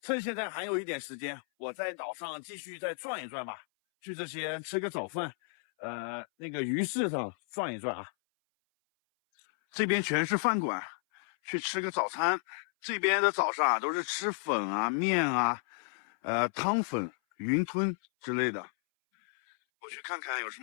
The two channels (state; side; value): silent; right; 56 dB below the other